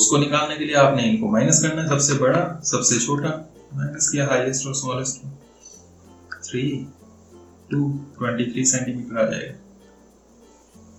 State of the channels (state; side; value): identical; both; correlation 1.00